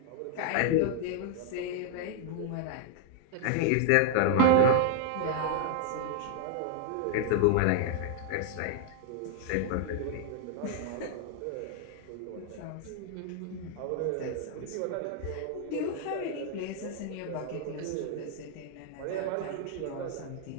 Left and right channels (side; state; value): both; different; correlation 0.00